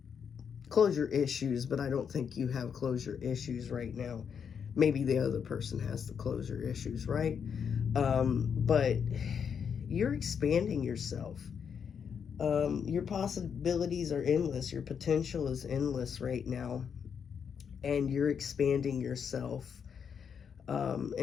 Closure issues, but I don't think you have closure issues right now. Maybe the other person has the closure issues, right? But you're expanding yourself. Your possibilities are endless. Your potential is endless right now. And you're expanding yourself.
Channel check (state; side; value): quieter; right; 7.1 dB